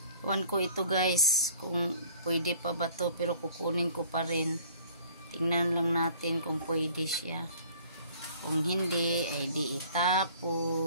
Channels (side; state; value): both; inverted; correlation -0.53